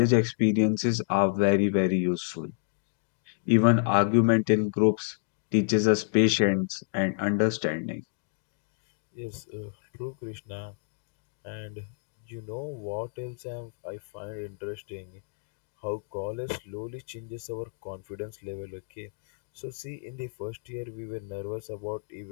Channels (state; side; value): silent; right; digital silence